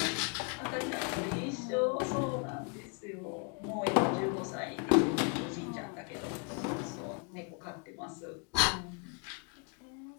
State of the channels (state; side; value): quieter; right; 35.4 dB